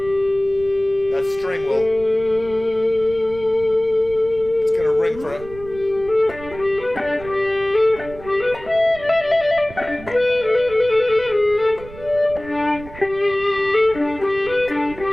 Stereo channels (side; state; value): right; noise; rumble, 17 dB below the sound